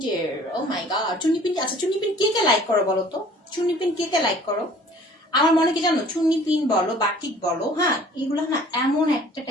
ও মাই গড, চুন্নি প্রিন্ট। আচ্ছা, চুন্নি প্রিন্ট কে কে লাইক করো বলো তো? চুন্নি প্রিন্ট কে কে লাইক করো? আমার মনে কি জানো, চুন্নি প্রিন্ট বলো, বাটিক বলো, হ্যাঁ, এগুলো না এমন একটা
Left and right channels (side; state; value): both; normal; correlation 0.52